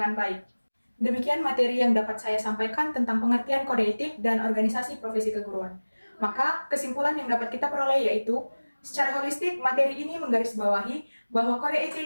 baik. Demikian materi yang dapat saya sampaikan tentang pengertian kode etik dan organisasi profesi keguruan. Maka kesimpulan yang dapat kita peroleh yaitu, secara holistik, materi ini menggarisbawahi bahwa kode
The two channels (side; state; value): both; inverted; correlation -1.00